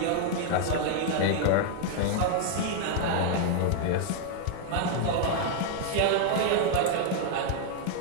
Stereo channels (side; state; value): both; different; correlation 0.00